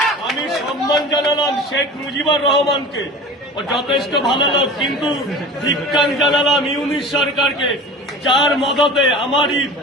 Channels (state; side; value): normal; both; correlation 0.37